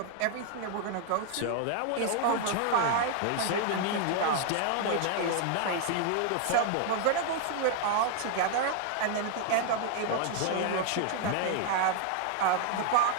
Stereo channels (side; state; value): both; different; correlation 0.00